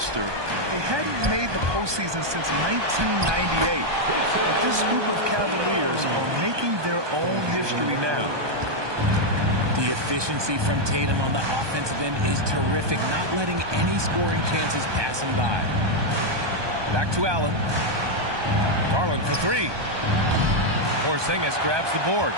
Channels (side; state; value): left; late; 1.2 ms